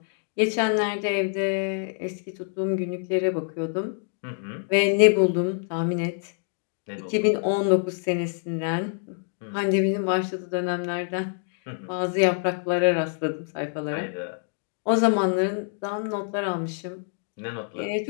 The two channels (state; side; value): silent; right; 61 dB below the other